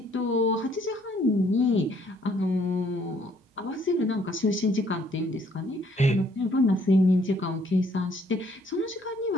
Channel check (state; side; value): normal; both; correlation 0.64